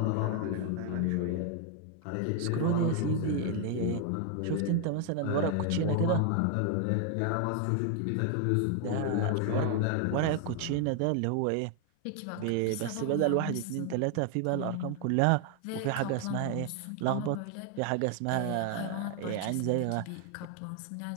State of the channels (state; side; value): different; both; correlation 0.00